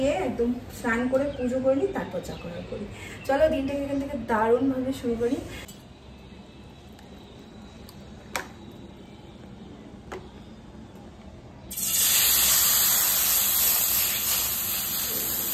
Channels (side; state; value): both; identical; correlation 1.00